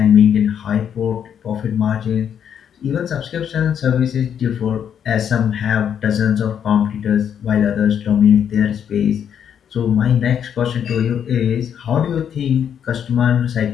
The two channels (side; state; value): right; quieter; 8.6 dB